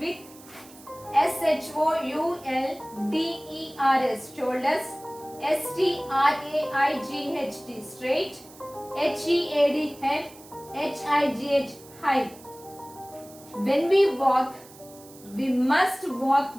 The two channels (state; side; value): noise; right; hiss, 21 dB below the sound